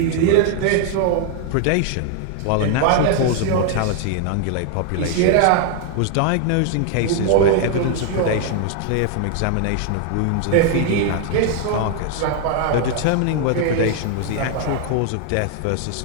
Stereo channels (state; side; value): different; both; correlation 0.00